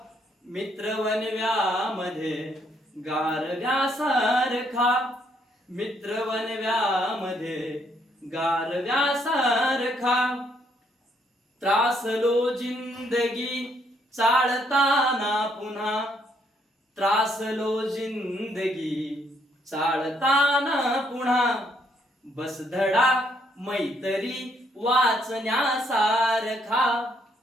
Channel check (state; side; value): normal; both; correlation 0.71